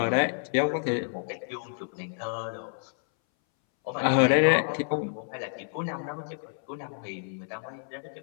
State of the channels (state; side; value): silent; right; 59 dB below the other